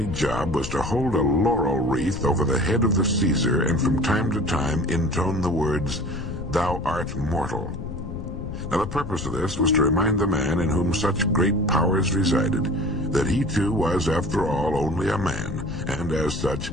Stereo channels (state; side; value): noise; left; rumble, 8 dB below the sound